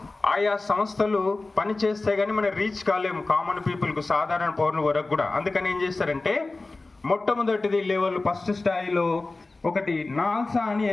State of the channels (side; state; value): right; quieter; 3.3 dB